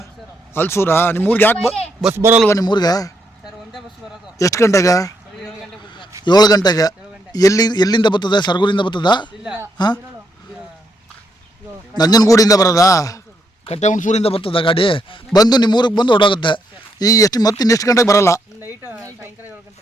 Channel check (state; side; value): normal; both; correlation 0.77